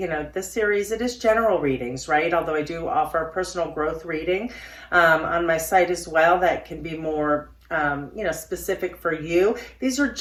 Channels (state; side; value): identical; both; correlation 1.00